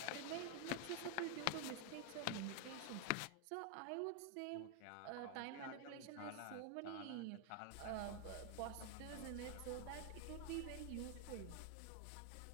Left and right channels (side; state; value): both; different; correlation 0.00